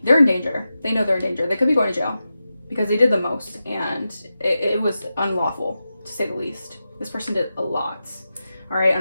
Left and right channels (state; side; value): inverted; both; correlation -0.91